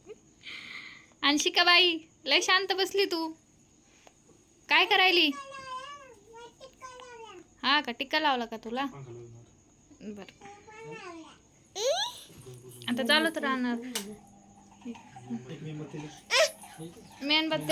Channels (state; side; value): identical; both; correlation 1.00